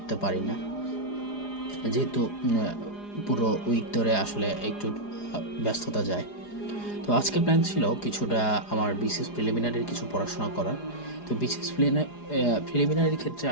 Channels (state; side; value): late; right; 4.9 ms